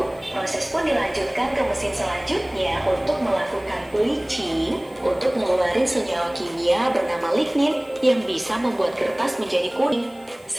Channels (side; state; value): left; noise; hiss, 28 dB below the sound